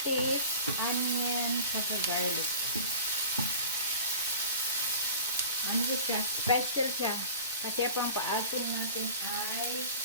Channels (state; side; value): inverted; both; correlation -0.40